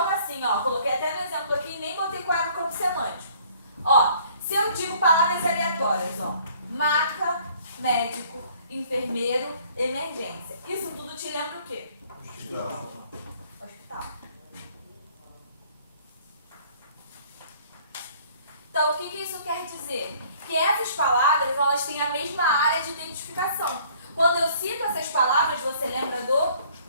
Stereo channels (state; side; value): inverted; both; correlation -0.57